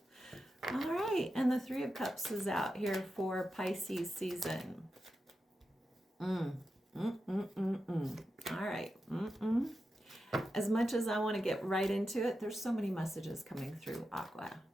All right, and the Three of Cups is out here for Pisces season. All right. As much as I want to get right into it, there's so many messages coming through, Aqua.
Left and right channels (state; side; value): normal; both; correlation 0.90